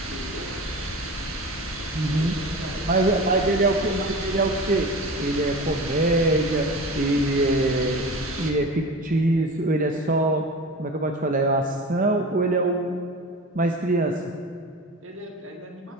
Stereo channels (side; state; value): both; normal; correlation 0.33